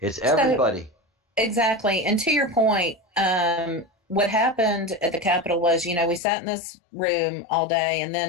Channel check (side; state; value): right; drops out; at 6.2 s